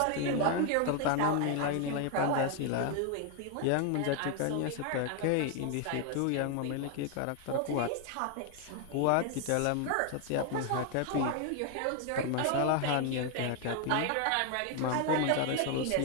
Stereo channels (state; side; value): different; both; correlation 0.01